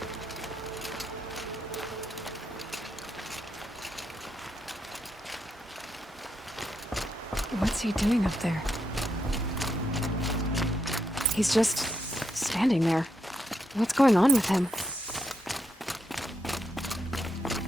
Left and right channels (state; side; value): normal; both; correlation 0.81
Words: What's he doing up there? He's just standing there. What's going on with him?